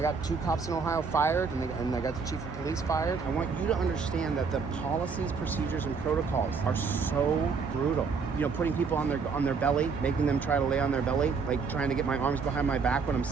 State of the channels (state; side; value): quieter; left; 5.3 dB